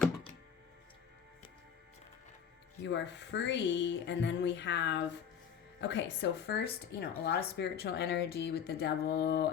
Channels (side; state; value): right; quieter; 7.8 dB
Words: You are free. And then we have... Okay, so first, a lot of spiritual energy with the devil